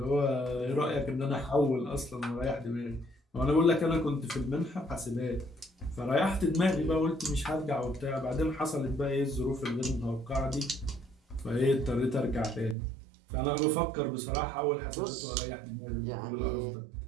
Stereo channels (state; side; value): drops out; left; at 12.8 s